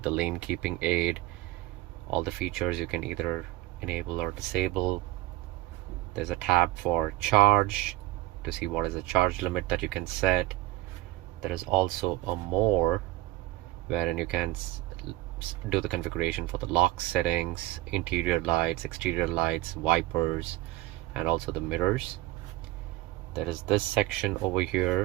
the lane keeping aid, all the features you can either enable or disable. There's a tab for charge to see what is the charge limit that you can set. There is also a more, wherein you can do the configuration for the lock settings, interior lights, exterior lights, wipers, and also the mirrors. There is this section over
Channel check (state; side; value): quieter; left; 18.0 dB